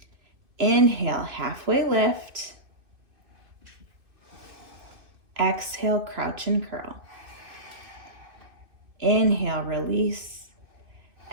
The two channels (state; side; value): late; left; 2.5 ms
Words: Inhale, halfway lift. Exhale, crouch and curl. Inhale, release.